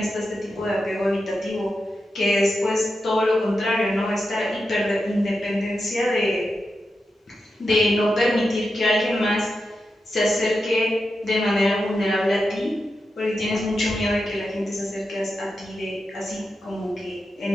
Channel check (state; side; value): normal; both; correlation 0.89